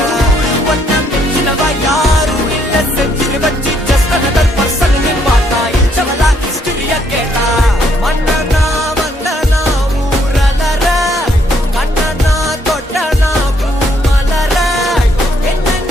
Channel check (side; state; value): both; normal; correlation 0.70